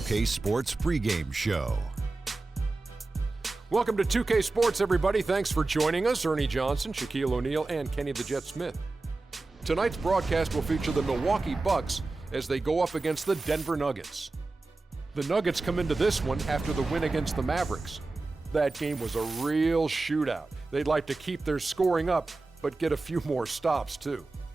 2K Sports pregame show. Welcome to 2K Sports, everybody. Thanks for joining us. Ernie Johnson, Shaquille O'Neal, and Kenny the Jet Smith. Tonight's broadcast will feature the Milwaukee Bucks as they go up against the Denver Nuggets. The Nuggets come into this one after the win against the Mavericks. That game was a real shootout. They'd like to keep their scoring up, but get a few more stops, too.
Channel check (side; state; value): left; quieter; 3.4 dB